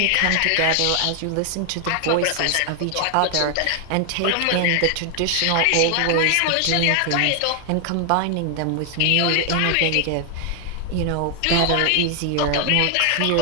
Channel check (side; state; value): both; different; correlation 0.00